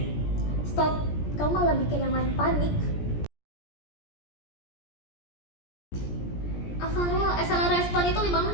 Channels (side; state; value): right; late; 17 ms